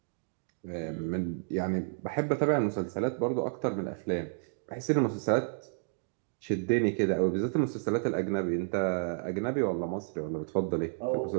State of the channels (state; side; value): silent; left; digital silence